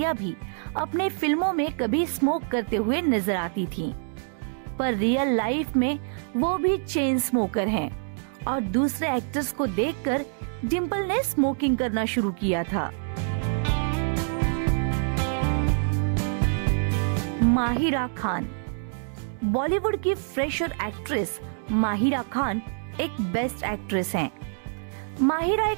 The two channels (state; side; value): silent; left; digital silence